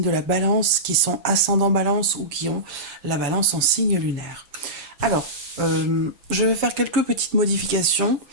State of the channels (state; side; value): late; left; 6.9 ms